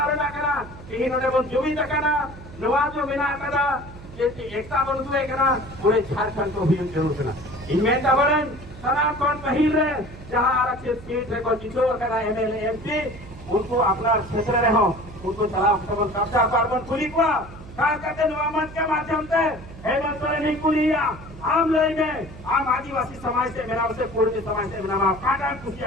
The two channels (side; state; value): right; noise; hum, 16 dB below the sound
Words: ना करा इन्होंने वो जुमी तकना नवाजो बिना करा एकता बंधुए करा पूरे झारखंड को भी जरूर करा इनमें तबरन सनातन पहिल रहे जहाँ आरक्षित सीट है को जितो करा एमएलए एमपी उनको अपना क्षेत्र रहो उनको चला कब्जा कार्बन खुली को खास करके नवामत के माध्यम से हेमंत सोरेन नहीं कुलिया आम लय में आम आदिवासी समाज से मेरा उसे पूर्व समाज से मेरा काटा कुछ